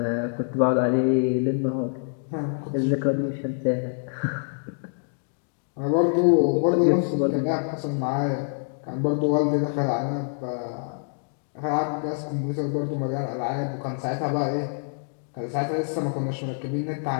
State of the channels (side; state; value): right; silent; digital silence